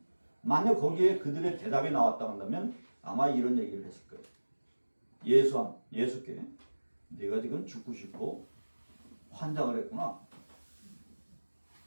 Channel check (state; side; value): inverted; both; correlation -1.00